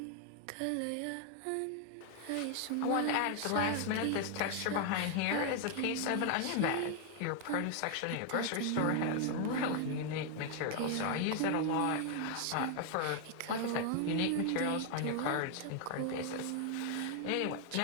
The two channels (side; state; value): both; different; correlation 0.00